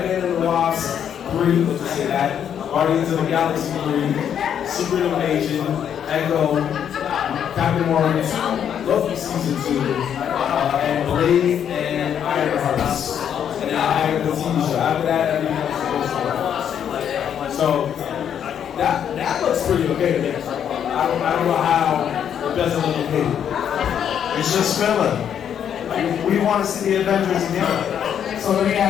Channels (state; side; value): quieter; right; 8.9 dB